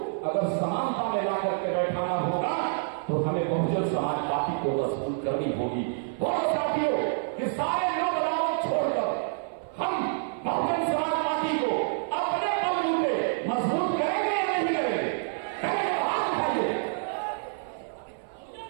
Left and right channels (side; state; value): left; silent; 56 dB below the other